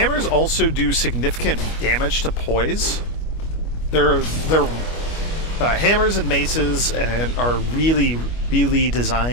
also do significant damage to poise. They're hammers and maces and are really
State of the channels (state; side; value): late; right; 25 ms